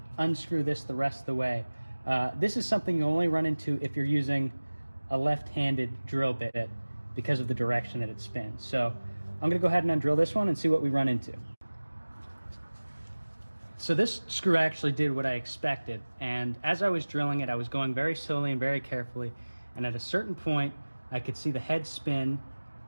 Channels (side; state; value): both; inverted; correlation -1.00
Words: unscrew this the rest of the way. This is something you only run into if you're using a left-handed drill bit because of the direction that it spins. So I'm gonna go ahead and undrill this one and see what we run into. So this screw actually did what I expected, and as I was drilling it, I was going very slowly and very carefully, and at a certain point, I could see the head spin,